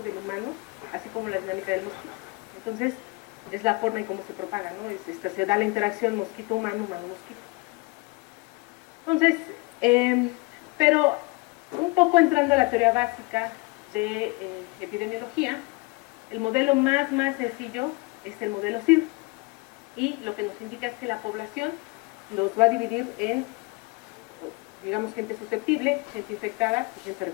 del humano, así como la dinámica del mosquito. Entonces, es la forma en cómo se propaga, ¿no? Se da la interacción mosquito-humano, humano-mosquito. Entonces, pero un poco entrando a la teoría básica de epidemiología, el modelo más sencillo es el modelo CIR, y lo que nos indica es que la población los va a dividir en, digamos, gente susceptible, gente infectada y gente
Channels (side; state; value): right; quieter; 26.5 dB